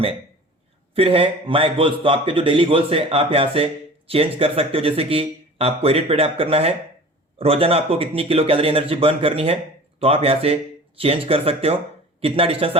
फिर है माय गोल्स, तो आपके जो डेली गोल्स है आप यहां से चेंज कर सकते हो। जैसे कि आपको एडिट पे टैप करना है, रोजाना आपको कितनी किलो कैलोरी एनर्जी बर्न करनी है तो आप यहां से चेंज कर सकते हो। कितना डिस्टेंस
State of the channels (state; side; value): normal; both; correlation 0.41